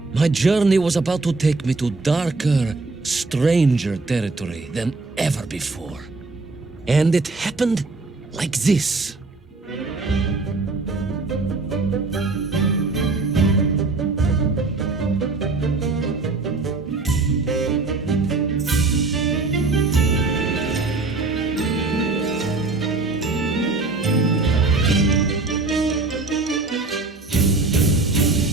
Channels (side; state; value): left; quieter; 3.6 dB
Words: my journey was about to take me to darker, stranger territory than ever before. And it happened like this.